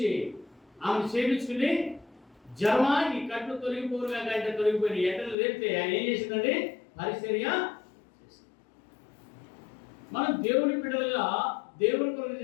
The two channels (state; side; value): drops out; right; at 5.4 s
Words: ఆమెను చేపించుకుని జ్వరమా ఈ కట్లు తొలగిపోరుగా కంటే తొలగిపోయి ఎట్టలు లేపితే ఆయన ఏం చేసిందండి? పరిచర్య చేసింది. మనం దేవుని బిడ్డలుగా దేవుని కొరకు